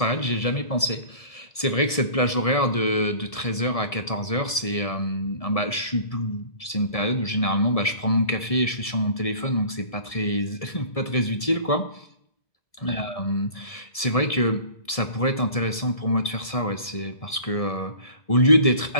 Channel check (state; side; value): late; right; 1.7 ms